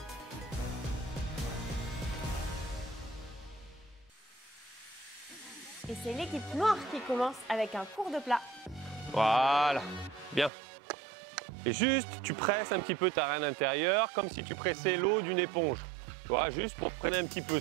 Et c'est l'équipe noire qui commence avec un cours de plat. Voilà, bien. Et juste, tu presses un petit peu ta reine intérieure comme si tu pressais l'eau d'une éponge. Tu vois, juste pour freiner un petit peu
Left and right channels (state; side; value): drops out; left; at 10.5 s